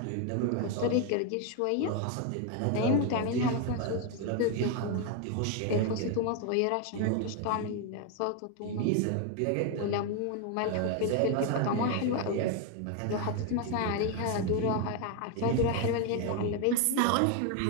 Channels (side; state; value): both; different; correlation 0.01